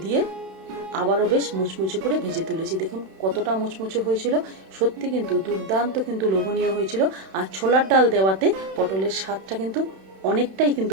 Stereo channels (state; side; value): late; left; 31 ms